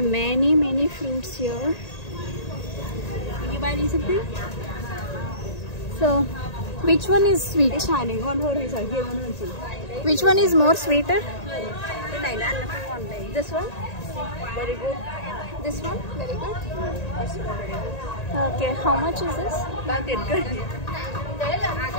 many fruits here. Are you buying something? So, which one is sweet? Which one is more sweeter? This one? Very good. This one? Very good. This one very good. Okay, how much is this? 3 tiền cân.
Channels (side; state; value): right; late; 1.8 ms